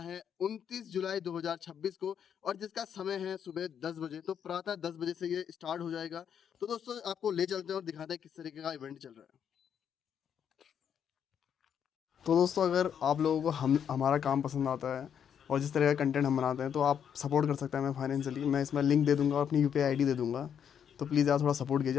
29 जुलाई 2026 को और जिसका समय है सुबह 10 बजे। तो प्रातः 10 बजे से ये स्टार्ट हो जाएगा। तो दोस्तों आपको ले चलते हैं और दिखाते हैं किस तरीके का इवेंट चल रहा है। तो दोस्तों अगर आप लोगों को हम हमारा काम पसंद आता है और जिस तरह का कंटेंट हम बनाते हैं तो आप सपोर्ट कर सकते हैं हमें फाइनेंशियली। मैं इसमें लिंक दे दूंगा और अपनी यूपीआई आईडी दे दूंगा। तो प्लीज़ यार थोड़ा सपोर्ट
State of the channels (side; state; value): right; quieter; 8.3 dB